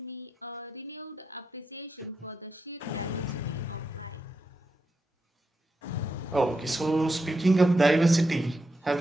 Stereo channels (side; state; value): both; normal; correlation 0.85